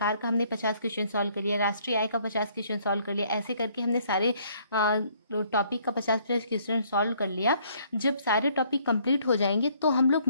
का हमने 50 क्वेश्चन सॉल्व कर लिया, राष्ट्रीय आय का 50 क्वेश्चन सॉल्व कर लिया। ऐसे करके हमने सारे टॉपिक का 50-50 क्वेश्चन सॉल्व कर लिया। जब सारे टॉपिक कंप्लीट हो जाएंगे तो हम लोग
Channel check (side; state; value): both; inverted; correlation -0.64